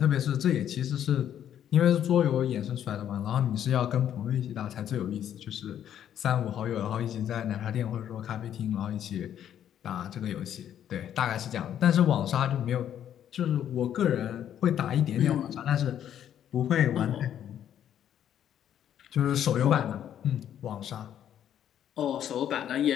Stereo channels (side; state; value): right; quieter; 10.1 dB